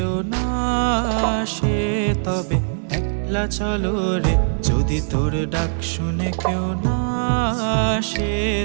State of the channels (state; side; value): silent; left; digital silence